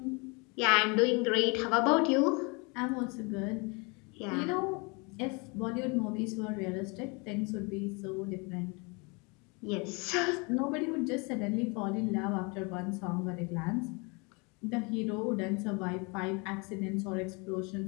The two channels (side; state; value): right; quieter; 30.2 dB